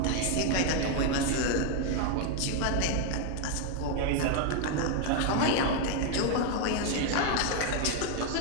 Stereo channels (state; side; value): different; both; correlation 0.01